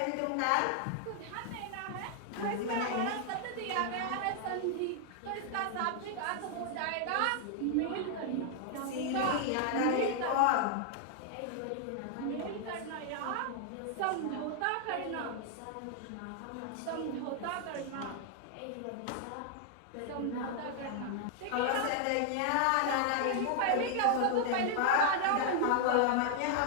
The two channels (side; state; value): both; different; correlation 0.00